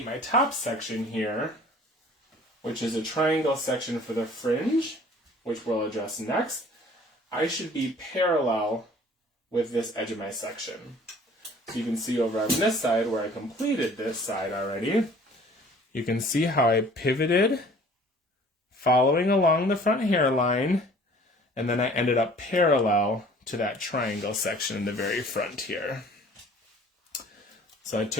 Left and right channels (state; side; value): normal; both; correlation 0.51